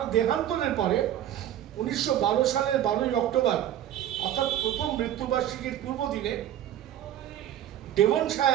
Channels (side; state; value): left; quieter; 11.5 dB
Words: দেহান্তরের পরে 1912 সালের 12ই অক্টোবর অর্থাৎ প্রথম মৃত্যুবার্ষিকীর পূর্ব দিনে